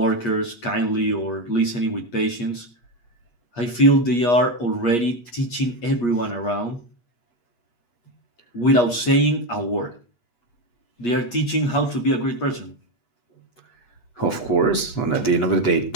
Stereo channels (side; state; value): right; late; 8.4 ms